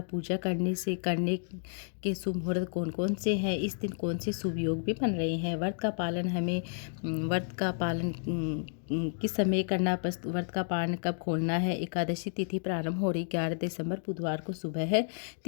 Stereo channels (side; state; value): right; silent; digital silence